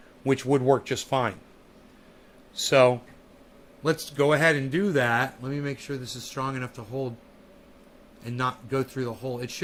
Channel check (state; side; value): identical; both; correlation 1.00